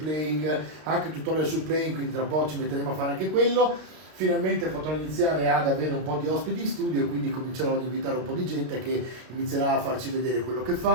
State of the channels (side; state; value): left; late; 32 ms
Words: anche tutorial sul playing, quindi tra poco ci metteremo a fare anche quello. Finalmente potrò iniziare ad avere un po' di ospiti in studio, quindi comincerò ad invitare un po' di gente che inizierà a farci vedere quello che